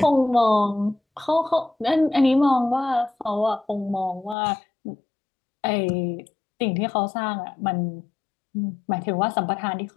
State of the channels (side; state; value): right; drops out; at 4.4 s